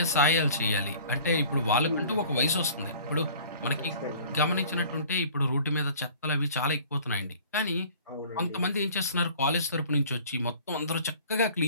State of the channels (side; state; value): both; inverted; correlation -0.48